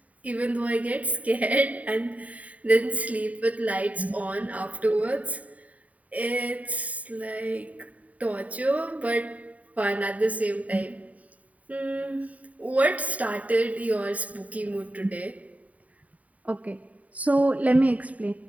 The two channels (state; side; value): late; left; 0.070 ms